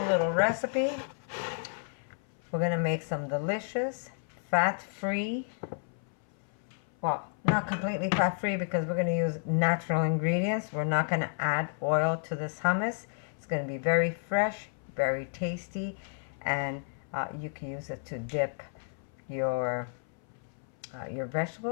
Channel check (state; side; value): silent; right; 57 dB below the other